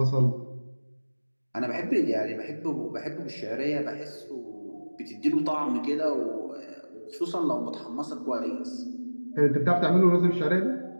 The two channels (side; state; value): both; inverted; correlation -1.00